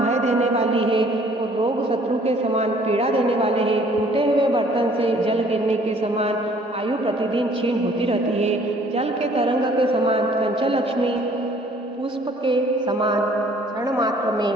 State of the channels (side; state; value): both; normal; correlation 0.57